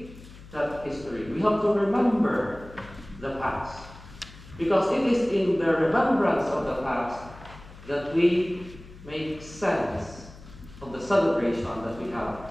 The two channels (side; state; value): left; noise; hum, 18 dB below the sound